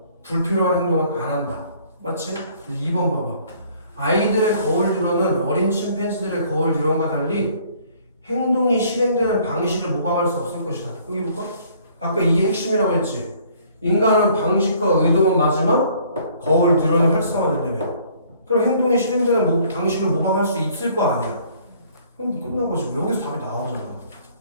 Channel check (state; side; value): inverted; both; correlation -0.59